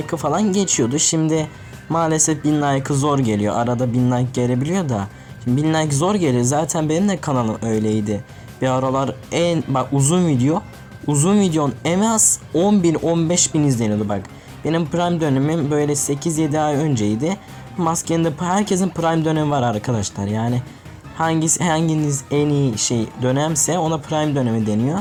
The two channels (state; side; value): identical; both; correlation 1.00